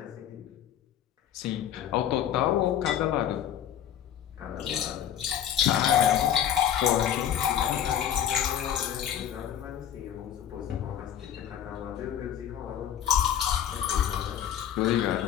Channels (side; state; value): right; quieter; 10.2 dB